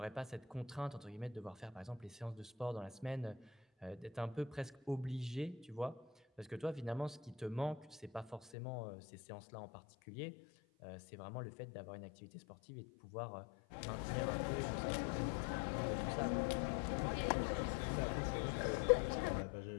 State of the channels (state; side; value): drops out; right; at 8.5 s